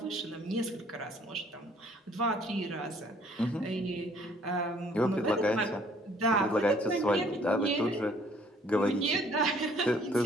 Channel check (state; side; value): normal; both; correlation 0.59